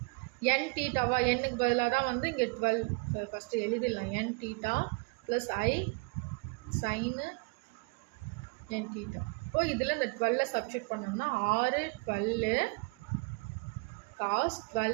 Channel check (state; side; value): quieter; left; 32.1 dB